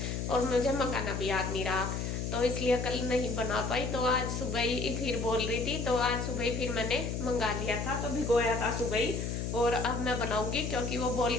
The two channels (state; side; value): noise; left; hum, 3 dB below the sound